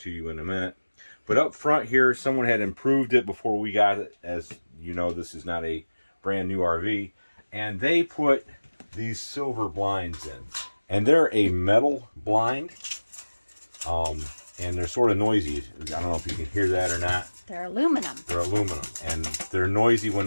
you in a minute. But up front here, someone had improved it before we got it. As you know, this is not a brand new RV, and they put these silver blinds in. And they're a metal blind, and they're sort of noisy. I don't know if you can hear that or not. They're aluminum. They're aluminum, and they're noisy when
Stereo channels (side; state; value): both; inverted; correlation -1.00